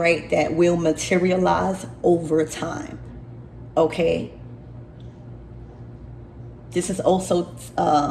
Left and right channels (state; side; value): identical; both; correlation 1.00